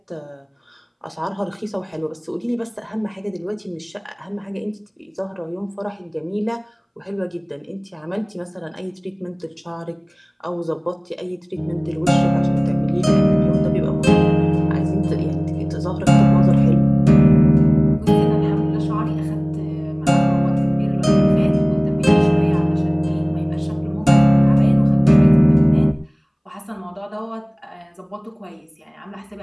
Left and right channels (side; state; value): both; identical; correlation 1.00